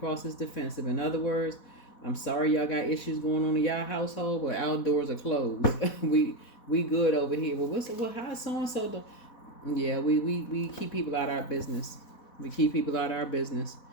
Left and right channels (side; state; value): right; late; 4.1 ms